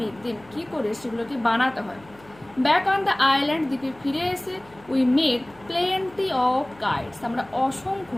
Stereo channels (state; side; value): noise; left; hum, 25 dB below the sound